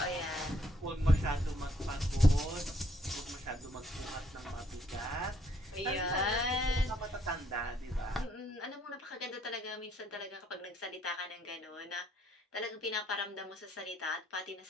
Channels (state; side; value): normal; both; correlation 0.68